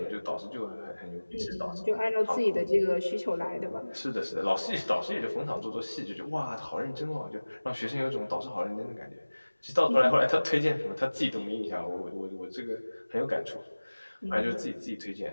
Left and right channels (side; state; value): both; inverted; correlation -1.00